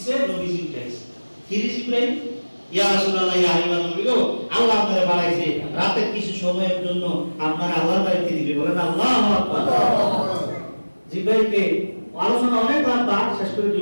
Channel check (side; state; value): both; inverted; correlation -1.00